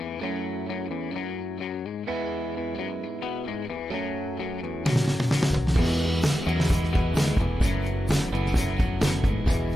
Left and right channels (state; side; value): normal; both; correlation 0.90